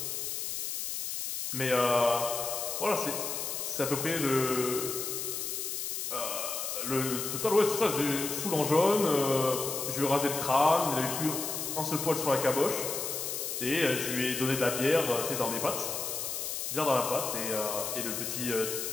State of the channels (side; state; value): left; noise; hiss, 3 dB below the sound